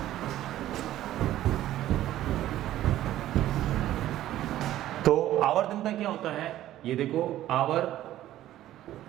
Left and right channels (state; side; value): quieter; left; 13.6 dB